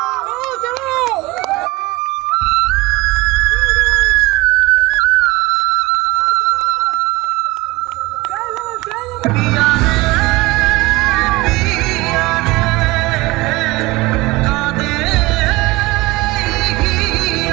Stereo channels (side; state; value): left; quieter; 21.3 dB